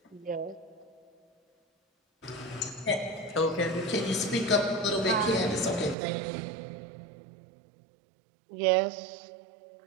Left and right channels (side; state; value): left; drops out; at 6.0 s